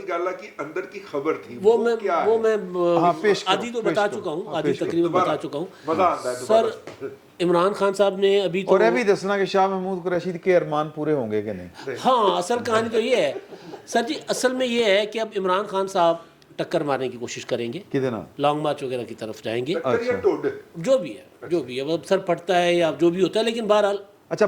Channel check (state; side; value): identical; both; correlation 1.00